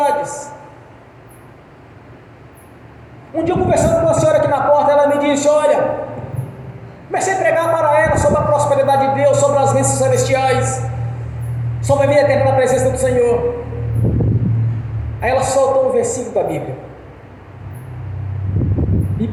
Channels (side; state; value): both; identical; correlation 1.00